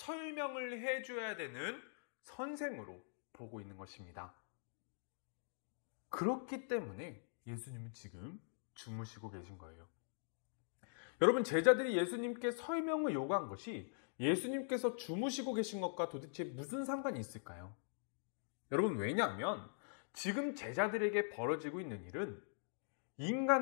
해줘야 되는 선생으로 보고 있는 것입니다. 그렇기 때문에 예수님은 지금 주무시고 계신 거예요. 여러분, 제자들이 예수님께 설명을 요구한 것이 예수님께서 주무시고 계신 것과 도대체 무슨 상관이 있을까요? 여러분, 왜냐하면 지금 제자들에게 벌어지고 있는 일은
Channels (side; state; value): right; silent; digital silence